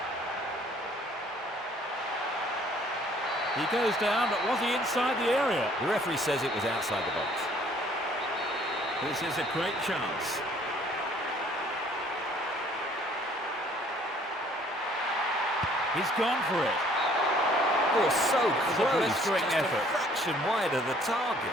He goes down, but was he inside the area? The referee says it was outside the box. This is a great chance. He's gone for it. Oh, so It's a close. blistering Just effort. a fraction wide of the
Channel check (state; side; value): normal; both; correlation 0.59